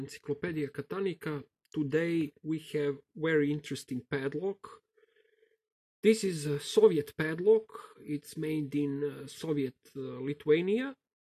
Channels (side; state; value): both; identical; correlation 1.00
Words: Catanica. Today we have very interesting padlock. This is a Soviet padlock. It's made in Soviet Lithuania